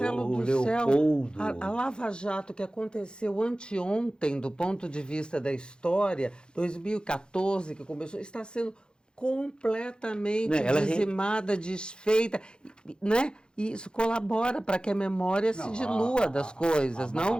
o do céu, Leopoldo. a Lava Jato que aconteceu anteontem, do ponto de vista da história, 2014 que começou, está sendo completamente Né, ela dizimada, desfeita, né? E isso colabora para que a memória se dilua das coisas, não?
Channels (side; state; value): right; late; 0.049 ms